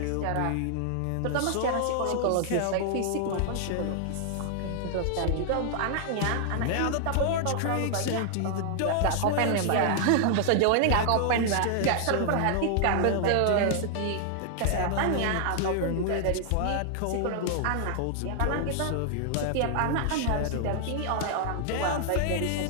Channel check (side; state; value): both; different; correlation -0.01